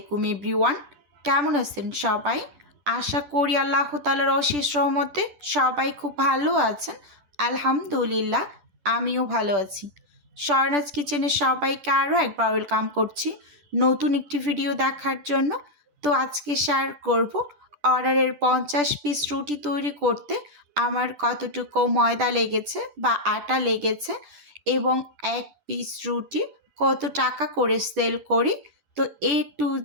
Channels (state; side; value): late; left; 10 ms